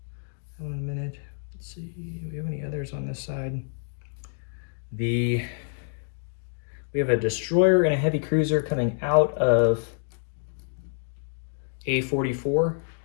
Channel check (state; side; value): silent; right; digital silence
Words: that one in a minute. Let's see, do we have any others on this side? We have a destroyer and a heavy cruiser coming out of A44,